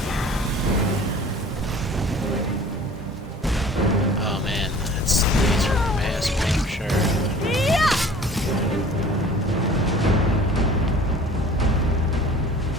Oh man, that's laser mass for sure.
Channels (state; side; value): normal; both; correlation 0.46